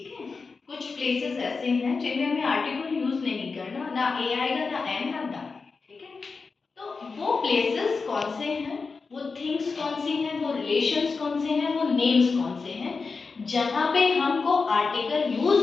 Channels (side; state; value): right; quieter; 4.5 dB